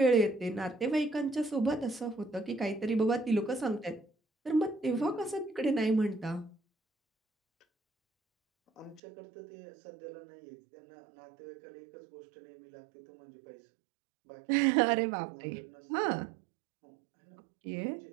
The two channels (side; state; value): left; drops out; at 9.0 s